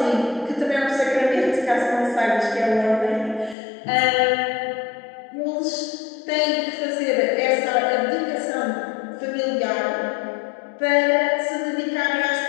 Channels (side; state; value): right; drops out; at 3.6 s